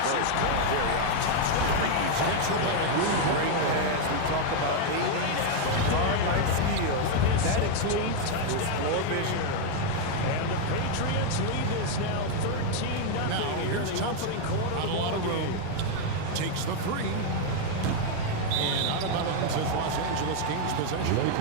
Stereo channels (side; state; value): both; different; correlation 0.01